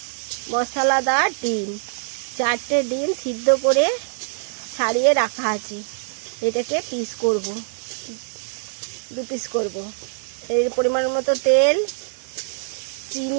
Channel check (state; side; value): silent; left; digital silence